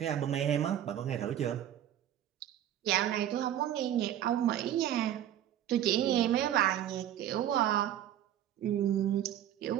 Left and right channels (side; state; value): left; quieter; 11.3 dB